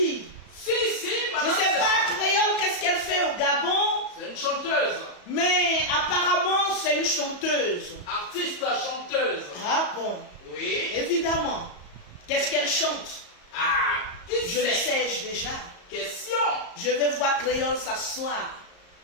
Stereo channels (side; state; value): right; late; 34 ms